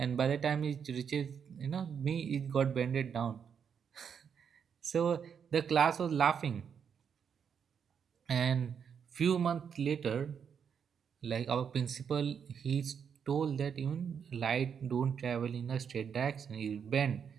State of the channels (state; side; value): quieter; left; 7.3 dB